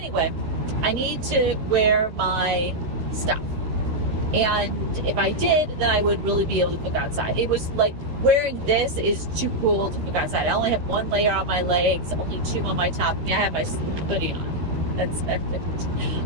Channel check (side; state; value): left; late; 12 ms